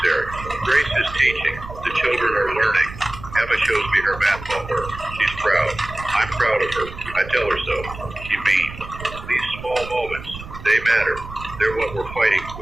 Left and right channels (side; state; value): right; noise; rumble, 13 dB below the sound